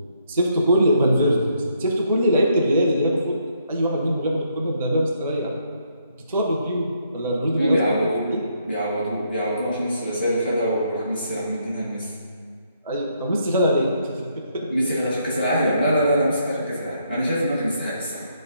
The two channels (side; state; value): both; inverted; correlation -0.73